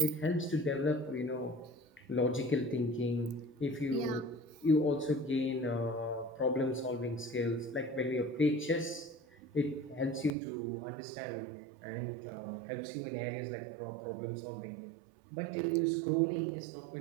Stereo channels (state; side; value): drops out; left; at 10.3 s